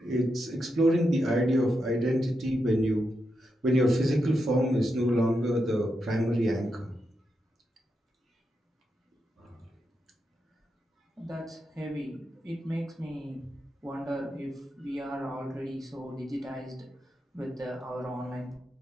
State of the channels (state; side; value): normal; both; correlation 0.85